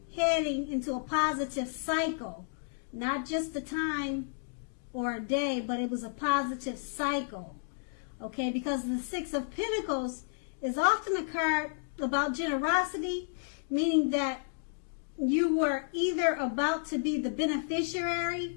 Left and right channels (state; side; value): silent; right; digital silence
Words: heading into a positive cycle. Not just a time or a day, but it was a positive cycle. Okay, because the Six of Pentacles is often a card about generosity, meaning that you were either about to be the